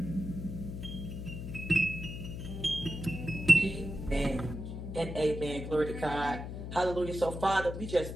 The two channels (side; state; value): left; noise; hum, 7 dB below the sound